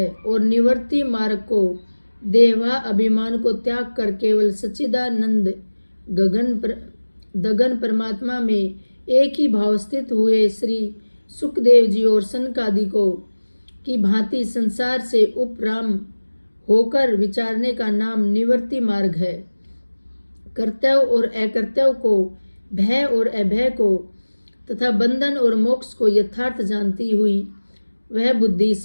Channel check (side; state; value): both; inverted; correlation -1.00